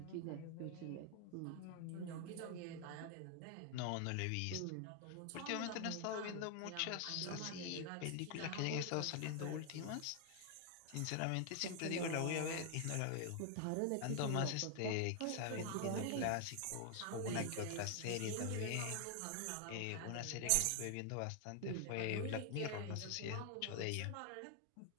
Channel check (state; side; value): different; both; correlation 0.00